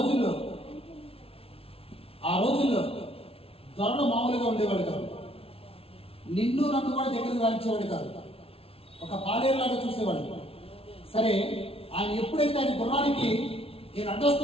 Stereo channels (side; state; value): right; late; 0.27 ms